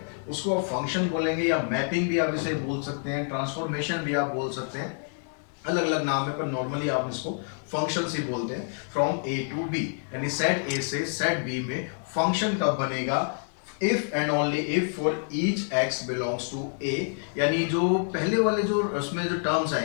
उसको आप फंक्शन बोलेंगे, या मैपिंग भी आप इसे बोल सकते हैं, ट्रांसफॉर्मेशन भी आप बोल सकते हैं, अलग अलग नाम है, पर नॉर्मली आप इसको फंक्शंस ही बोलते हैं। फ्रॉम ए टू बी, यानी सेट ए से सेट बी में फंक्शन कब बनेगा? If and only if for each x belongs to A, यानी जो पहले वाले जो उसमें जो टर्म्स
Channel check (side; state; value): right; silent; 60 dB below the other